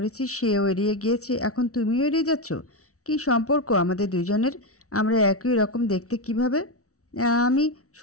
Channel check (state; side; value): late; right; 0.64 ms